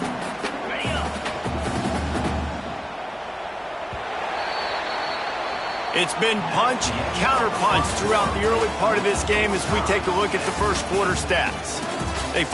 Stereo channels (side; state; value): both; identical; correlation 1.00